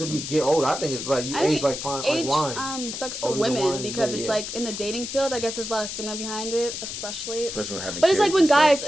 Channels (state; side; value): noise; left; hiss, 6 dB below the sound